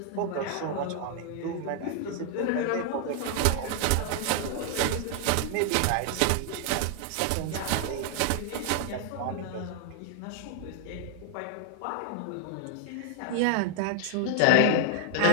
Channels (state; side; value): different; both; correlation 0.00